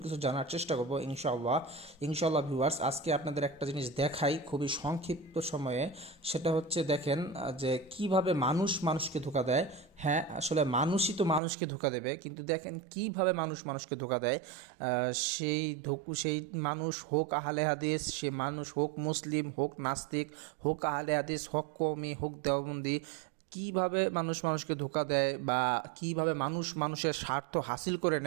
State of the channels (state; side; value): drops out; left; at 11.4 s